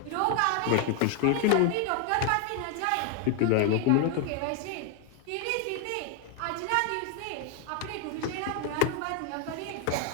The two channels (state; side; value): different; both; correlation 0.01